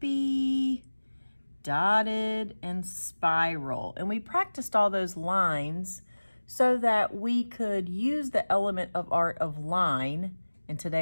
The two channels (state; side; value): inverted; both; correlation -1.00